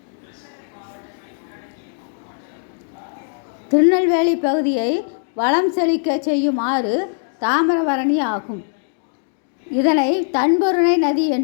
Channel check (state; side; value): silent; right; digital silence